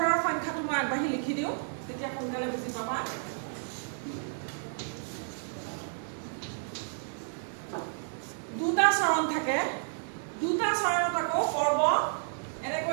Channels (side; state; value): left; silent; digital silence